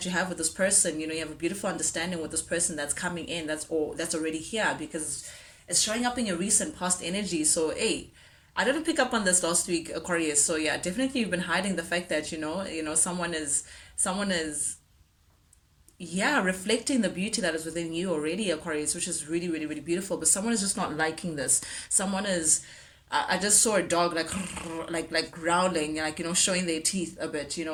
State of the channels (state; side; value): identical; both; correlation 1.00